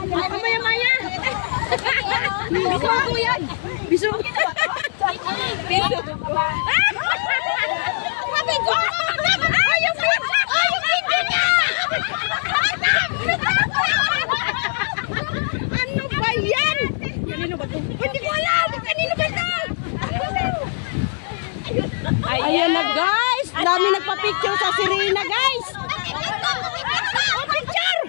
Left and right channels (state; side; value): silent; right; 65 dB below the other